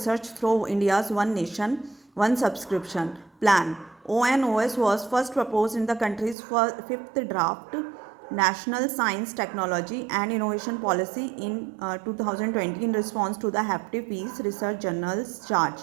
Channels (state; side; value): drops out; left; at 6.4 s